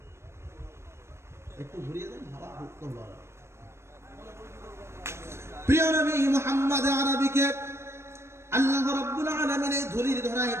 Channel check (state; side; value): late; left; 0.13 ms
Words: একটু ঘুরিয়ে দেন, হাওয়া ঢুকতো ভালো। প্রিয় নবী মুহাম্মদ আরবিকে আল্লাহ রাব্বুল আলামিন এই ধুলির ধরায়